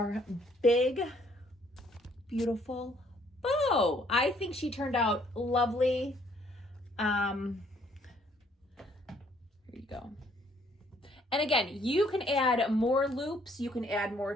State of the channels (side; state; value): both; normal; correlation 0.64